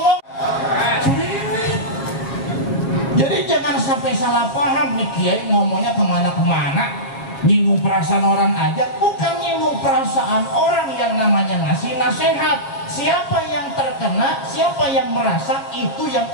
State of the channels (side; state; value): right; late; 7.4 ms